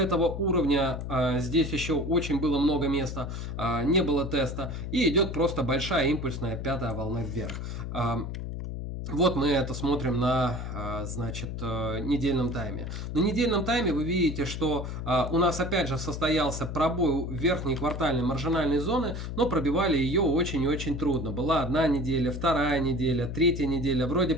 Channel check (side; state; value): left; noise; hum, 6 dB below the sound